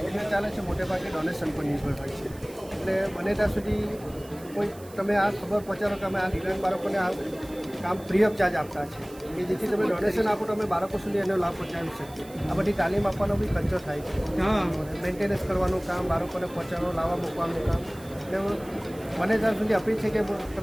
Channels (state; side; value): noise; right; hiss, 21 dB below the sound